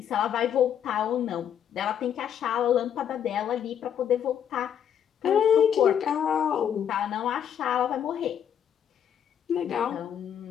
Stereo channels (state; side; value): quieter; right; 9.0 dB